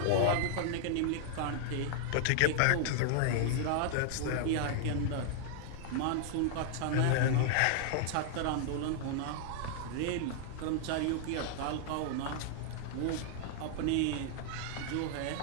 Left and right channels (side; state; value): both; different; correlation 0.00